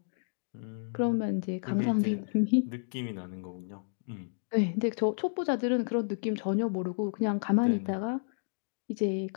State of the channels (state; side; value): silent; right; digital silence